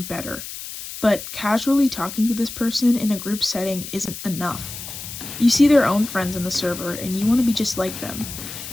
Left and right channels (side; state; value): left; noise; hiss, 10 dB below the sound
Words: better. But casually talking to this person in a group setting isn't enough. You see their own friends in the server and you want to be just like them.